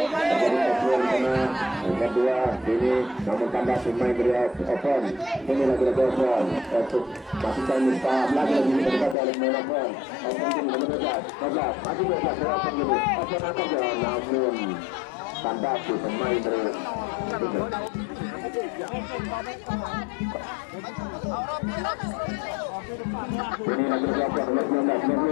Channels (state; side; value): drops out; right; at 9.2 s